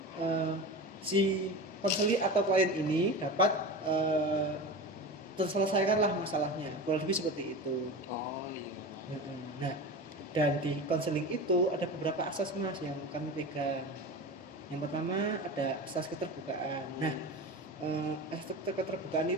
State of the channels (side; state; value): both; normal; correlation 0.28